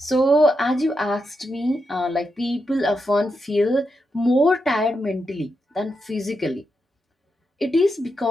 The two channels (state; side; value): normal; both; correlation 0.85